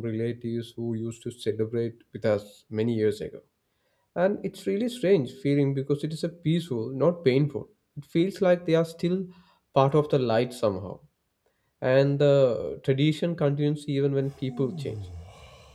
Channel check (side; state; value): both; identical; correlation 1.00